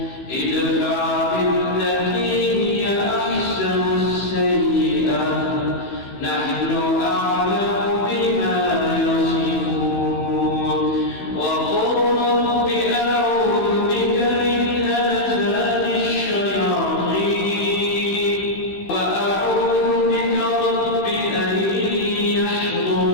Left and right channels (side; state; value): right; late; 16 ms